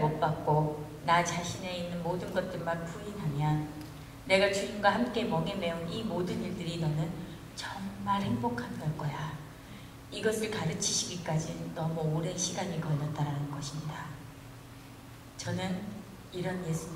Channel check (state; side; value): identical; both; correlation 1.00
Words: 못 박고 나 자신에 있는 모든 것들만 부인하면 내가 주님과 함께 멍에 매운 이 모든 일들이 너는 정말 행복한 걸 거야. 이것을 가르치시기까지 너무 오랜 시간이 걸렸다라는 것입니다. 저는 이런